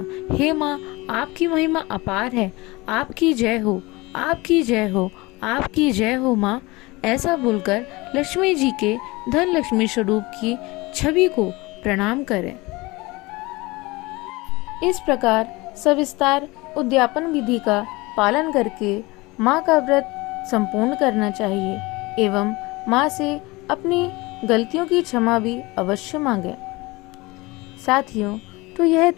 हे माँ, आपकी महिमा अपार है, आपकी जय हो, आपकी जय हो, आपकी जय हो माँ। ऐसा बोलकर लक्ष्मी जी के धन लक्ष्मी स्वरूप की छवि को प्रणाम करें। इस प्रकार सविस्तार उद्यापन विधि का पालन करके माँ का व्रत संपूर्ण करना चाहिए एवं माँ से अपनी गलतियों की क्षमा भी अवश्य मांगे। साथियों, तो यह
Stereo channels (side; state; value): right; quieter; 22.8 dB